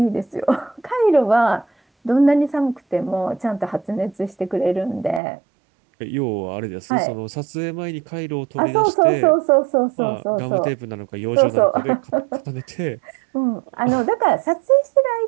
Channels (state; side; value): drops out; left; at 5.2 s